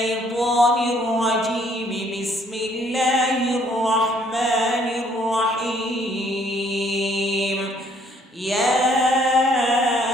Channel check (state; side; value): normal; both; correlation 0.64